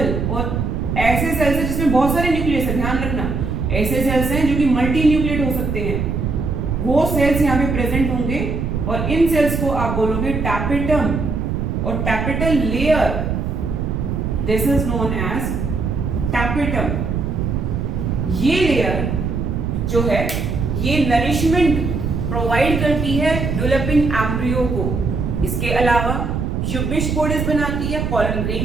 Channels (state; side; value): noise; right; rumble, 1 dB below the sound